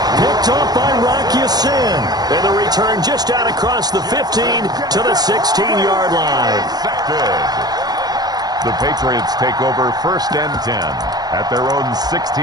Picked off by Rocky Sin. And the return just out across the 15 to the 16-yard line. The Patriots take over 1st and 10 at their own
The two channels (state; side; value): late; left; 0.19 ms